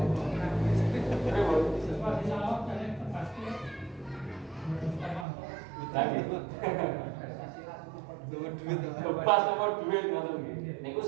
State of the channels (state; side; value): drops out; left; at 5.2 s